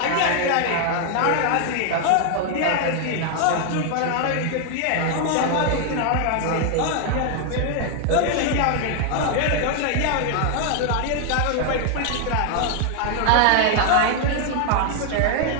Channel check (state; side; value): different; both; correlation 0.00